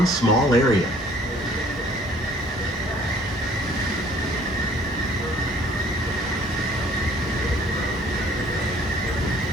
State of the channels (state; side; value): normal; both; correlation 0.56